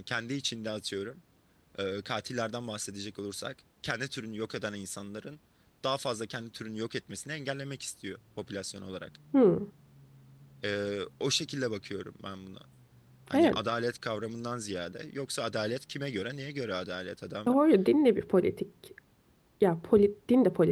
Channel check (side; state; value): both; identical; correlation 1.00